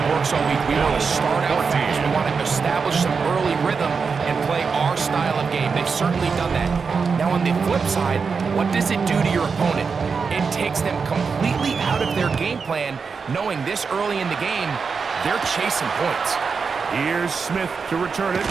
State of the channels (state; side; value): quieter; left; 5.3 dB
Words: works all week. We want to start out fast. We want to establish some early rhythm and play our style of game. They've certainly done that. Now, on the flip side, what does it do to your opponent? It takes them completely out of their game plan, knowing this early in the game, they're chasing points. Here's Smith to return it.